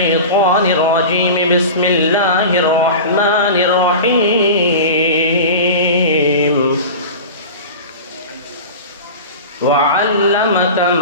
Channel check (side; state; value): both; inverted; correlation -0.31